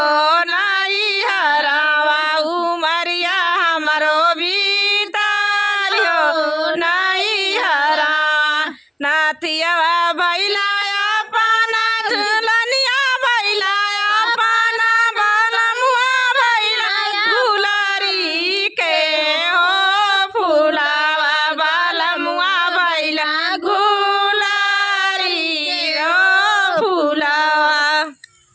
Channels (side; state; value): both; identical; correlation 1.00